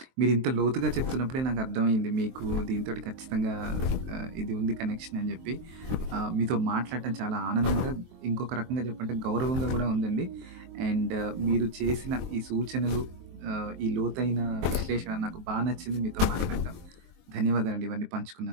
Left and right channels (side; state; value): left; late; 23 ms